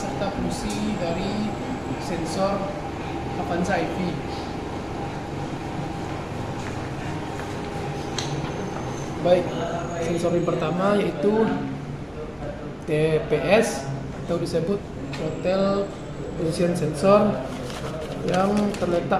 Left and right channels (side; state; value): both; identical; correlation 1.00